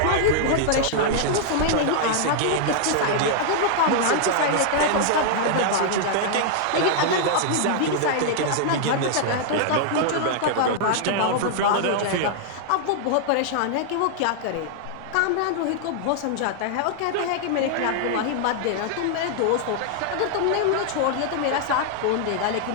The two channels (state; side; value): different; both; correlation -0.01